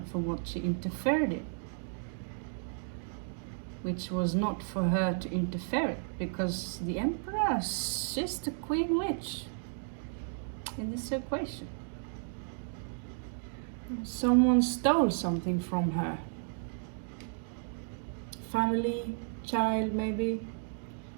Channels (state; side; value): silent; left; digital silence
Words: for what she interfered in, which was not for her to interfere, because the Empress, she's the Queen Witch in this equation. Someone stole something from her. Family, child, maybe.